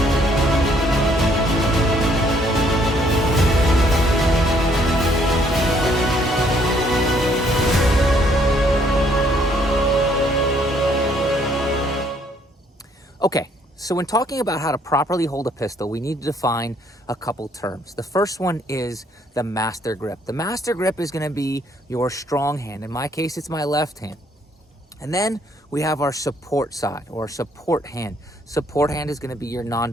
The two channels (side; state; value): both; normal; correlation 0.66